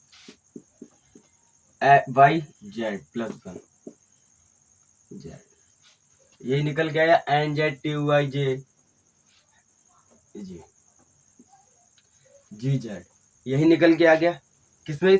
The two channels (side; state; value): both; identical; correlation 1.00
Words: Y Z +1 Z. यही निकल के आया NZTUIJ GZ, यही निकल के आ गया। किसमें